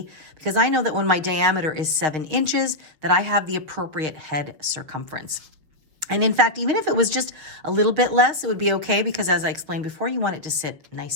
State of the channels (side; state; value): left; late; 6.4 ms